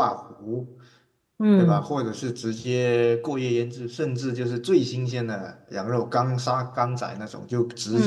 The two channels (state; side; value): identical; both; correlation 1.00